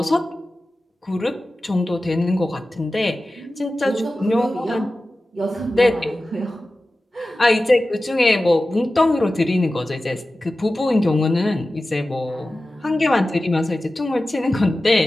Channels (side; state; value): both; normal; correlation 0.95